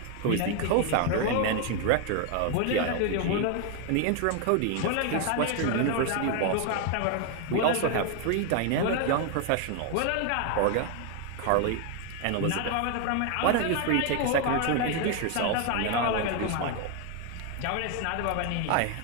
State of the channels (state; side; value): different; both; correlation 0.01